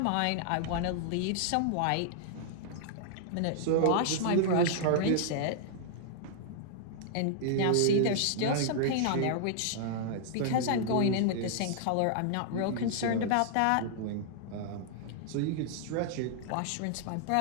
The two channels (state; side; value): different; both; correlation -0.01